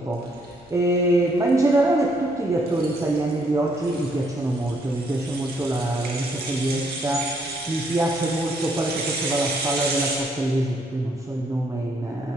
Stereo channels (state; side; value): normal; both; correlation 0.70